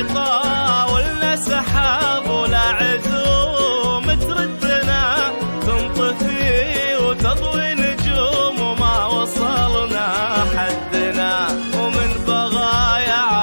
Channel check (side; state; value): both; inverted; correlation -1.00